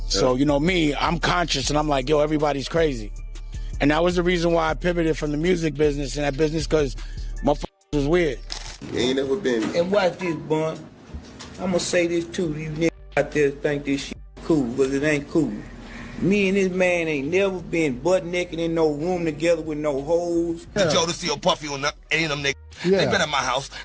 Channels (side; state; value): both; identical; correlation 1.00